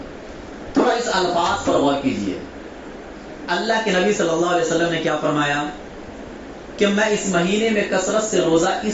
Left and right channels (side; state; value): both; identical; correlation 1.00